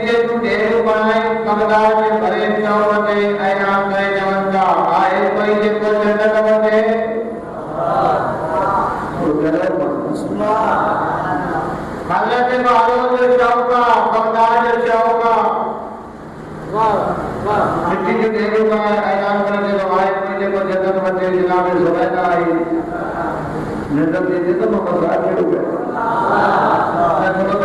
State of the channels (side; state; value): both; identical; correlation 1.00